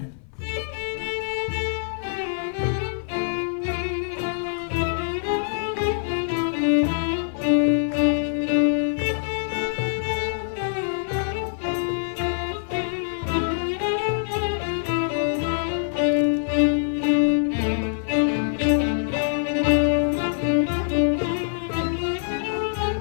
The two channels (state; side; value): silent; right; 56 dB below the other